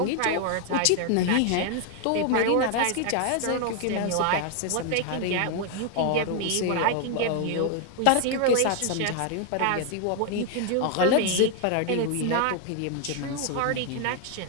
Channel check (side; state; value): both; different; correlation 0.00